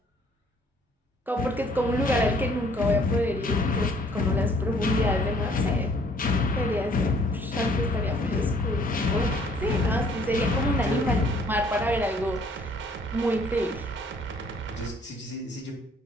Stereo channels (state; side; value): normal; both; correlation 0.61